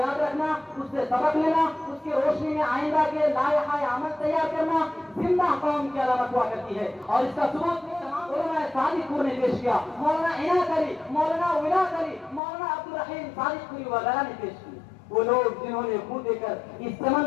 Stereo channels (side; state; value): right; drops out; at 12.4 s